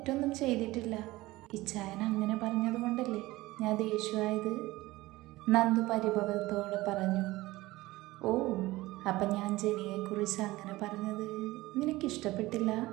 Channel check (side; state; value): left; quieter; 18.9 dB